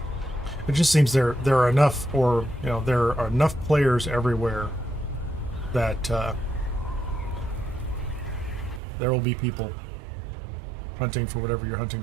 It just seems there are enough, or you know, there are enough players everywhere that there will be people hunting for whatever you're hunting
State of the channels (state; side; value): drops out; left; at 8.8 s